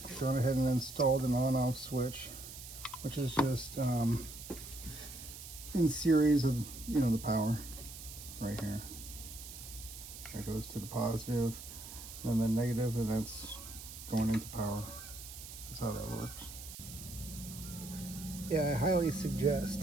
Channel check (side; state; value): right; noise; hiss, 12 dB below the sound